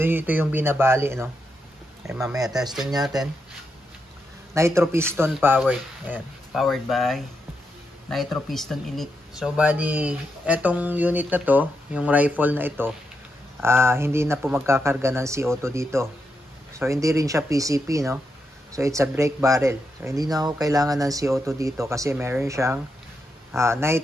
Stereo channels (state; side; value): normal; both; correlation 0.84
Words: yung binabali, no? Ay, mamaya testing natin. Nitro piston powered. Ayan. Powered by Nitro Piston Elite. So, bali, etong unit na to, yung rifle na ito, hindi na po magkakarga ng CO2 dito. So, hindi rin siya PCP, no? So, it's a brake barrel. So, hindi na ako kailangan ng CO2 dito kasi meron siyang